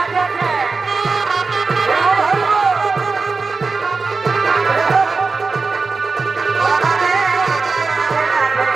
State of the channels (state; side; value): quieter; left; 4.3 dB